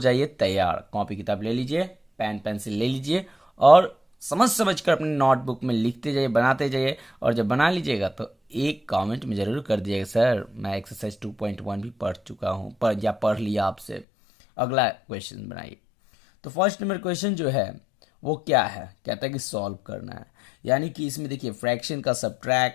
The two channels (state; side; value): drops out; right; at 14.1 s